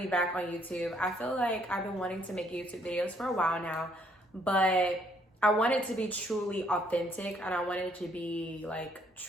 be back on YouTube. I feel like I've been wanting to make YouTube videos for a while now, but I want it to be truly authentic and I want it to be like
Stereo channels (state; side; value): normal; both; correlation 0.67